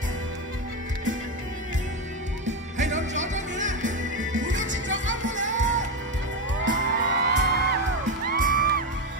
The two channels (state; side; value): normal; both; correlation 0.11